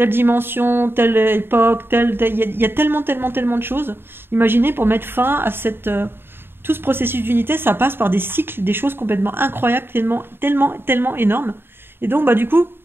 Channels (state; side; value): late; left; 0.11 ms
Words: dimension, telle époque, il y a tellement de choses. Imaginez, pour mettre fin à tout ce processus d'unité, ça passe par des cycles, des choses complètement incroyables, tellement énormes. Et donc, du coup,